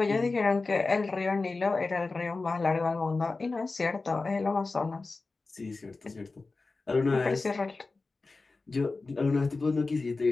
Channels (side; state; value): right; quieter; 3.7 dB